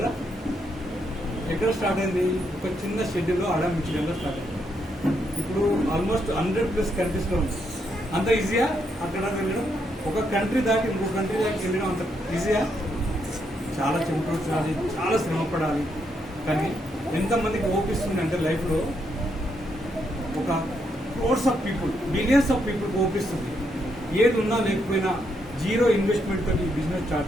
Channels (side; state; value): both; normal; correlation 0.78